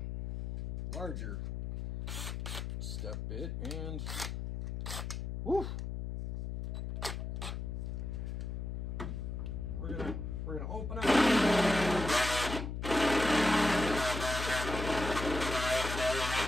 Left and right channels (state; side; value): noise; left; hum, 4 dB below the sound